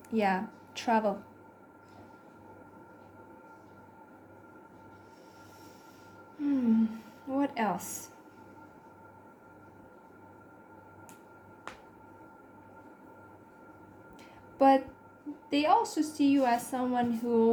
Yeah, travel. What else? But they also see you as someone who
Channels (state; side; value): identical; both; correlation 1.00